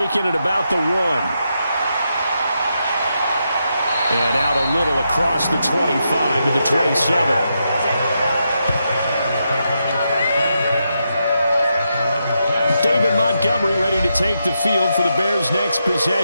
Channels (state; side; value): inverted; both; correlation -0.84